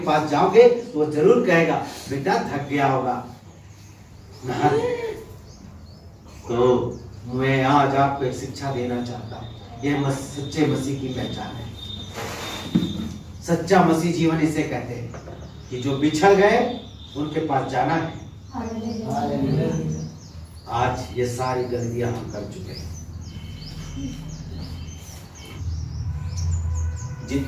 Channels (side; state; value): both; identical; correlation 1.00